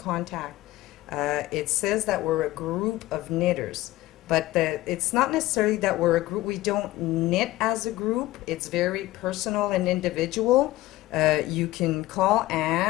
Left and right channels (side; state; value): right; quieter; 17.2 dB